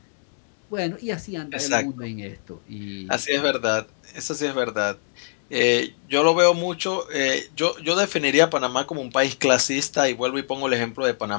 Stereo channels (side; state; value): right; silent; digital silence